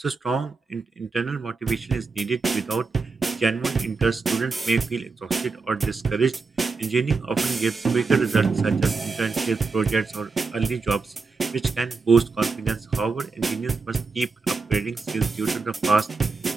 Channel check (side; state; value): left; quieter; 4.3 dB